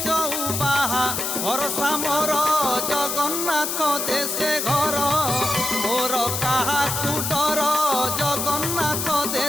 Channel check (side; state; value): left; noise; hiss, 2 dB below the sound